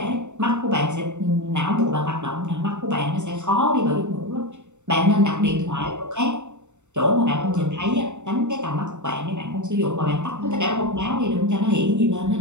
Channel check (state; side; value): late; left; 0.84 ms